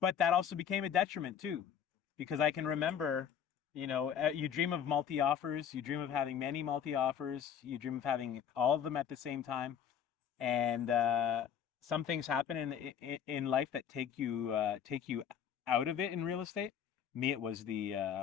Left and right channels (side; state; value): right; quieter; 8.4 dB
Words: But that also became a detriment too, because I can remember, you dream of multi-offers, you dream of having many multi-offers, you dream of having all of them at the same time. And some things happen in life that take you out of it in real estate. Me, it was